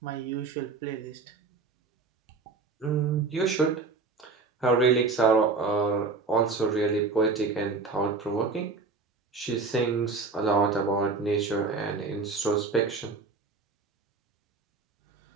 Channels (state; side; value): quieter; left; 4.2 dB